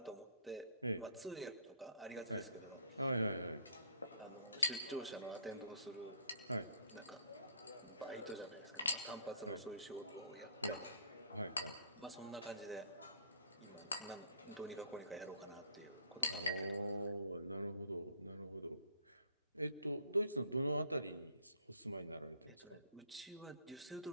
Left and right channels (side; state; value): both; inverted; correlation -0.60